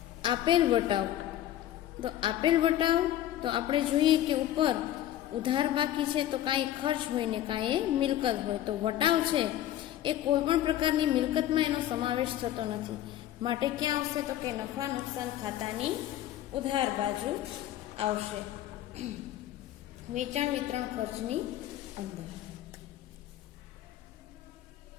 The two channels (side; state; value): right; quieter; 12.7 dB